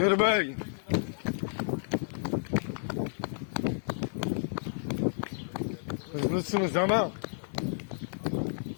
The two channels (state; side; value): silent; right; digital silence